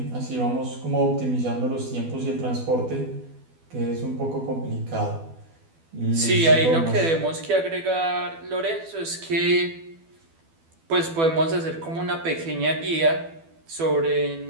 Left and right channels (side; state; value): left; late; 12 ms